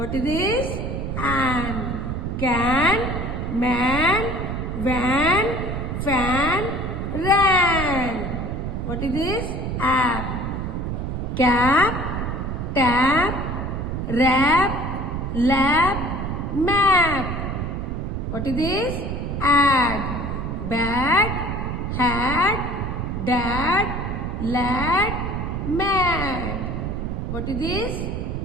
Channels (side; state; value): right; noise; rumble, 3 dB below the sound